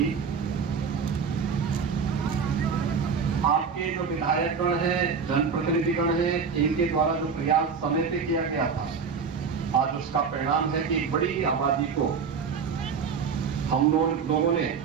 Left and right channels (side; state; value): left; quieter; 5.9 dB